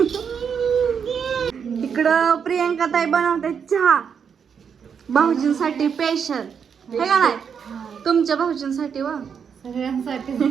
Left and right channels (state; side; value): quieter; left; 7.0 dB